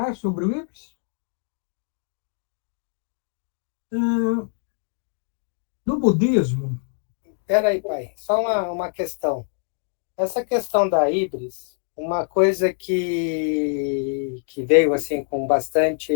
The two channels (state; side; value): silent; right; 55 dB below the other